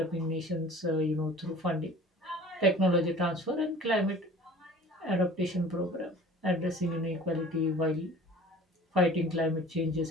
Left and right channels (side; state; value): both; normal; correlation 0.45